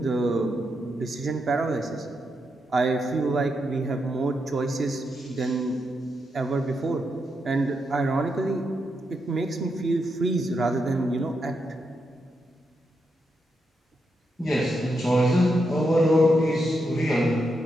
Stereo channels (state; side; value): normal; both; correlation 0.83